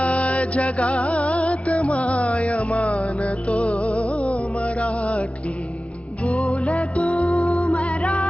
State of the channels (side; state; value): right; late; 0.062 ms